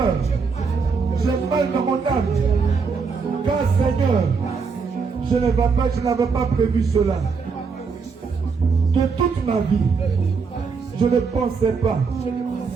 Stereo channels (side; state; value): left; quieter; 5.2 dB